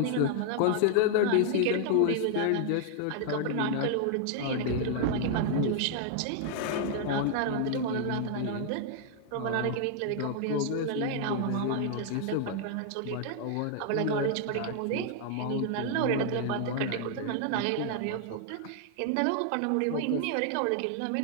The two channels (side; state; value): both; different; correlation 0.00